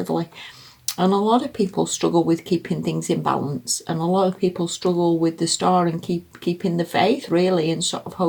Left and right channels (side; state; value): both; identical; correlation 1.00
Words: And a lot of people struggle with keeping things in balance, and a lot of people struggle with the Star and keeping the faith, really, and sort of